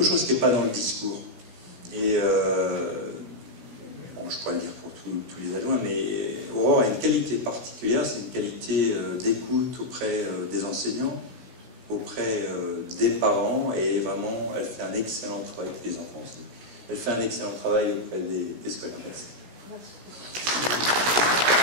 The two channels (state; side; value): late; left; 16 ms